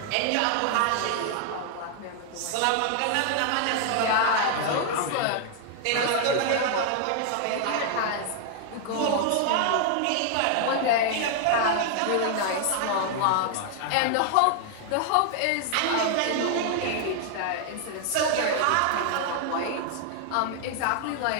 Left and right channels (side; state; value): both; different; correlation 0.00